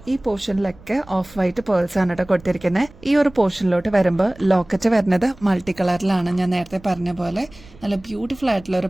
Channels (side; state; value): right; noise; rumble, 23 dB below the sound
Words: ഈ പോർഷനിലൊക്കെ ഓഫ് വൈറ്റ് പേൾസ് ആണ് കേട്ടോ കൊടുത്തിരിക്കുന്നത്. ഈ ഒരു പോർഷനിലോട്ട് വരുമ്പോൾ ലോക്കറ്റ് വരുന്നത് മൾട്ടി കളറിലാണ്. ഞാൻ നേരത്തെ പറഞ്ഞ പോലെ നല്ല ബ്യൂട്ടിഫുൾ ആയിട്ടുള്ള ഒരു